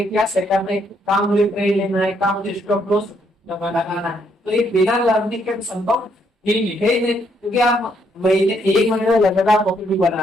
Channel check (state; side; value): normal; both; correlation 0.72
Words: क्या सेटअप है, काम मुझे ट्रेड लेना है, काम मुझे स्टॉप लॉस लगाना है। तो ये बिना लर्निंग के संभव ही नहीं, क्योंकि आप महीने 1 महीने में लगातार प्रॉफिट भी